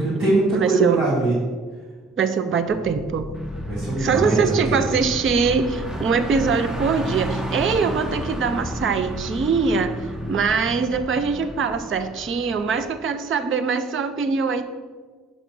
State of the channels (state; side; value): quieter; left; 4.0 dB